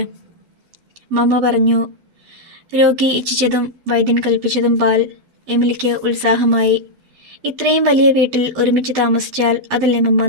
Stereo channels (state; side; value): late; left; 12 ms